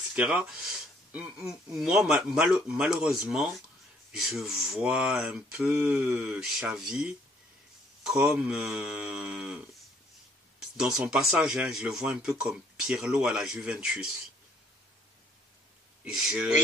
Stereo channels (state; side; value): normal; both; correlation 0.64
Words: Moi, malheureusement, je vois un peu Xavi comme dans son passage, je le vois un peu comme Pirlo à la Juventus.